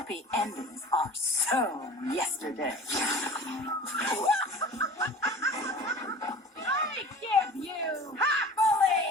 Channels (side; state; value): both; normal; correlation 0.41